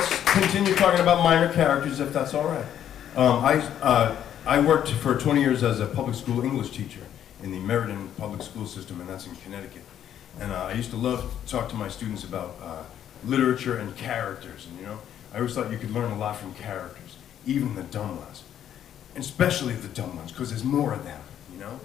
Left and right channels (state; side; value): quieter; right; 10.2 dB